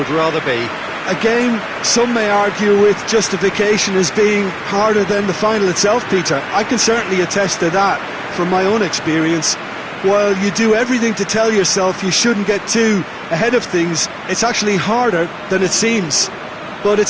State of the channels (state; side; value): identical; both; correlation 1.00